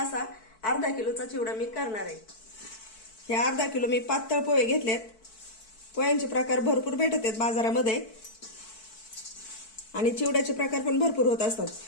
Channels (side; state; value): right; late; 4.6 ms